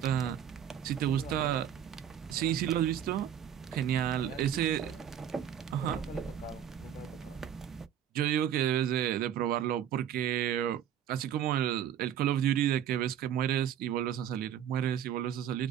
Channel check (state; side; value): quieter; left; 9.8 dB